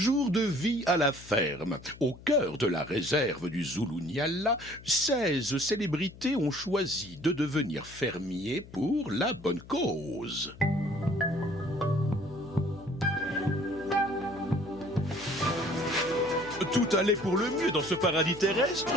de vie à la ferme. Au cœur de la réserve du Zulu-Nyala, 16 célébrités ont choisi de devenir fermiers pour la bonne cause. Tout allait pour le mieux dans ce paradis terrestre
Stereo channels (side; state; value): left; noise; hum, 19 dB below the sound